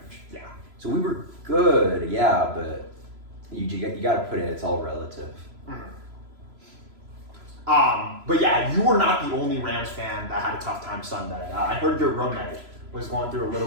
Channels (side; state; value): left; late; 3.0 ms